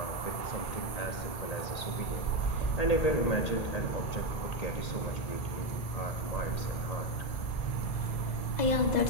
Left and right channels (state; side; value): late; right; 1.7 ms